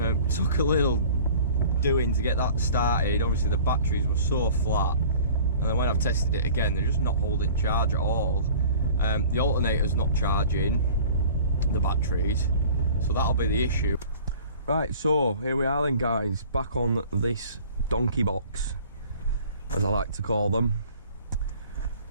Took a little doing to get that started. Obviously the batteries were so flat, and then when I've tested it again, they're just not holding charge at all. The alternator's not charging the batteries, so that'll be the issue. Right, so here we are then, guys, back on this donkey box, as I like to call them.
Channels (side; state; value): both; inverted; correlation -0.46